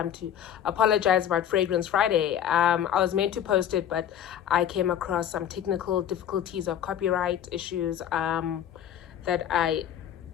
to apologize about Fragrance Friday. I was meant to post it, but I came across some technical difficulties of copyright issues that I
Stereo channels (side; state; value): right; quieter; 10.0 dB